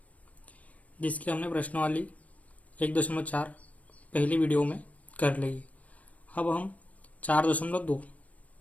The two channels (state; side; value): late; right; 0.070 ms